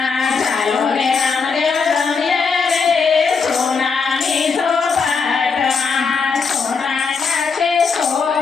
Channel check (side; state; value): right; quieter; 5.2 dB